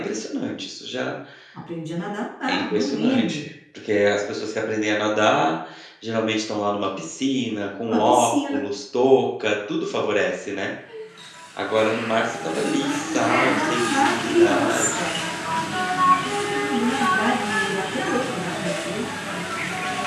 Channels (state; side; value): identical; both; correlation 1.00